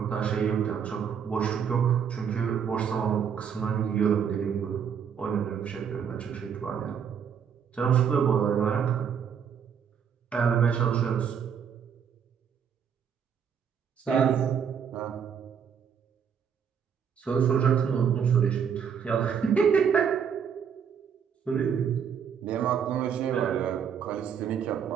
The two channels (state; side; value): quieter; left; 7.5 dB